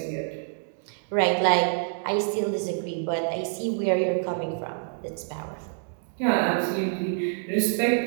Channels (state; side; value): silent; left; digital silence